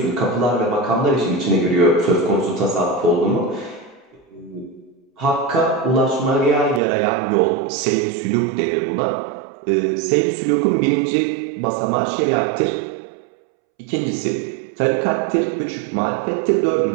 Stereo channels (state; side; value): drops out; left; at 6.8 s